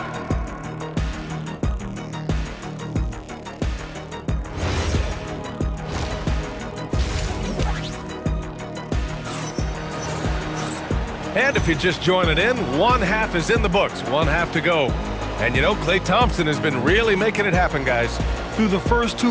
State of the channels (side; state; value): both; identical; correlation 1.00